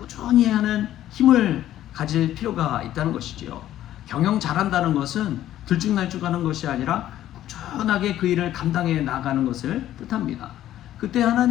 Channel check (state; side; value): quieter; right; 12.7 dB